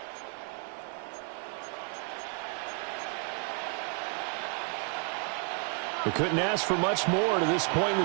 We couldn't ask for much more to this point in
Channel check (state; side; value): quieter; left; 38.6 dB